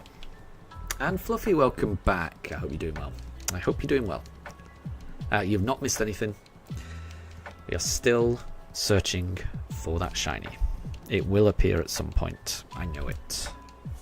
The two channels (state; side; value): identical; both; correlation 1.00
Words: And Fluffy, welcome back. I hope you're doing well. I hope you're doing well. You've not missed anything. We are still searching for that shiny. It will appear at some point. I know it.